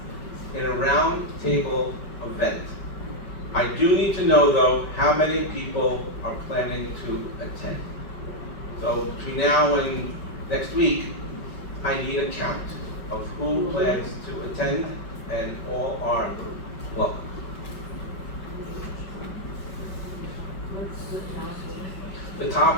in a round table event. I do need to know, though, how many people are planning to attend. So between now and next week, I need a count of who plans to attend, and all are welcome. The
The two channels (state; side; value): late; right; 5.3 ms